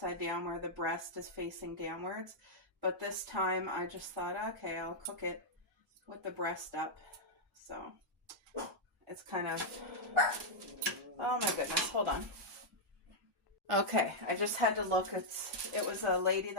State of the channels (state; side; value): normal; both; correlation -0.05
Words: down where the breast is facing downwards. But this time I just thought, okay, I'll cook it with the breast up. So it's kind of, oh my goodness, hold on. Okay, I just had to look. It was a lady